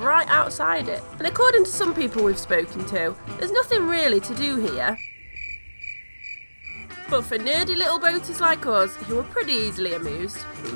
outside it. And according to some people we've spoken to, there's nothing really to do here. But for nerdy little boaters like us, who are pretty easily amused,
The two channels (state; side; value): inverted; both; correlation -1.00